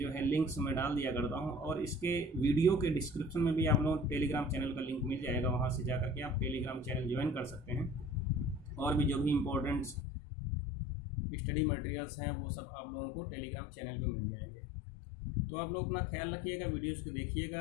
है लिंक्स मैं डाल दिया करता हूँ, और इसके वीडियो के डिस्क्रिप्शन में भी आप लोगों टेलीग्राम चैनल का लिंक मिल जाएगा, वहाँ से जा करके आप टेलीग्राम चैनल ज्वाइन कर सकते हैं, और भी जो भी इम्पोर्टेंट स्टडी मटेरियल्स हैं वो सब आप लोगों को टेलीग्राम चैनल पर मिल जाएंगे। तो आप लोग अपना ख्याल रखिएगा, वीडियोज़ को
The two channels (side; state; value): right; drops out; at 10.0 s